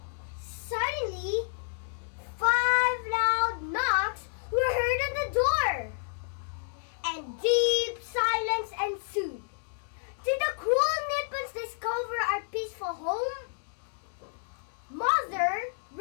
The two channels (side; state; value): right; silent; digital silence